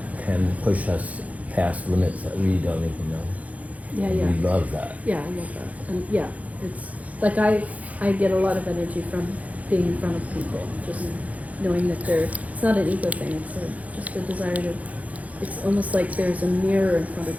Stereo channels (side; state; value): left; late; 0.070 ms